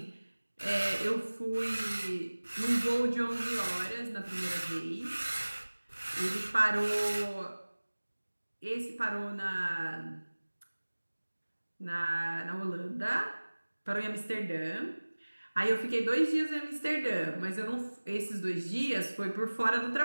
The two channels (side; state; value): both; inverted; correlation -1.00